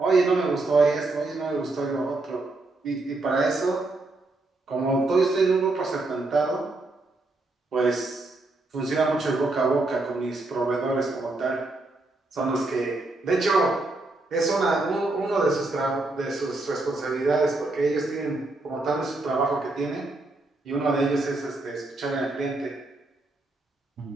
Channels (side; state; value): left; quieter; 3.0 dB